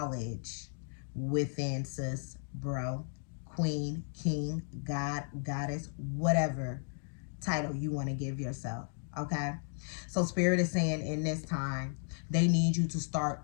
within, sis, bro, queen, king, god, goddess, whatever title you want to give yourself. Okay, so Spirit is saying in this time they need you to start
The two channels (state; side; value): silent; right; digital silence